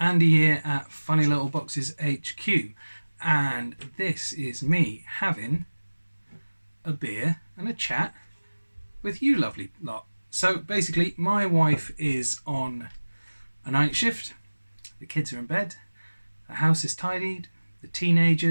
here at Funny Little Boxes HQ, and this is me having a beer and a chat with you lovely lot. So basically, my wife is on a night shift, the kids are in bed, the house is tidied, the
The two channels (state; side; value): inverted; both; correlation -1.00